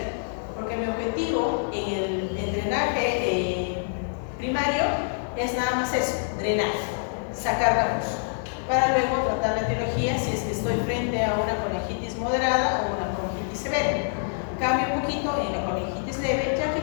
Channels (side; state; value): right; silent; digital silence